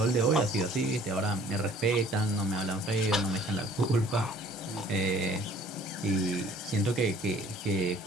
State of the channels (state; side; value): normal; both; correlation 0.54